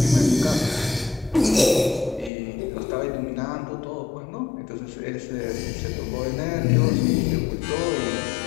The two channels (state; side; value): drops out; right; at 2.3 s